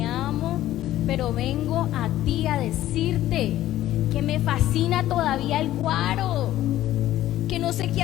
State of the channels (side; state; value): right; quieter; 13.9 dB